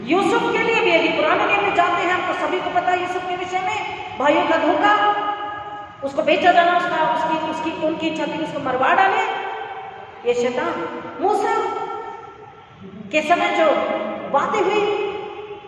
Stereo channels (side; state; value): both; identical; correlation 1.00